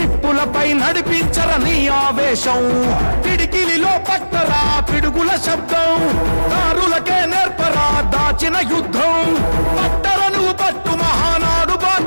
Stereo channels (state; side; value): inverted; both; correlation -1.00